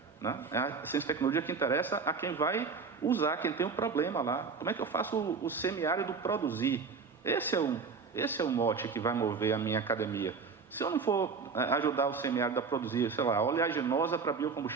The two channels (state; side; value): quieter; left; 5.1 dB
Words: né? É a ciência e tecnologia que interessa a quem vai usar, quem tem um problema lá. Como é que eu faço o semiárido produzir? Esse é o mote que vai mover a minha academia. Se eu não for ajudar o semiárido a produzir, sei lá, oleaginosa para